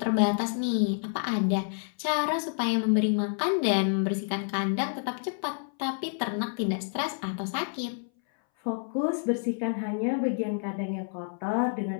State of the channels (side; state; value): right; silent; 59 dB below the other